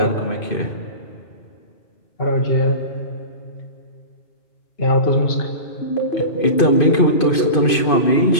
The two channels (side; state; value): right; late; 2.5 ms